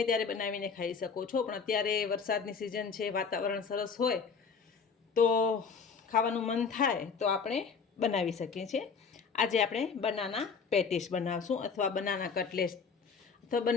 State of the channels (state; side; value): quieter; right; 5.6 dB